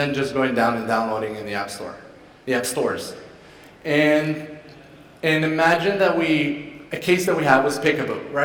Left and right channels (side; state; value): both; identical; correlation 1.00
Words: just going down and downloading in the App Stores. And imagine that a case that we had was Peekaboo,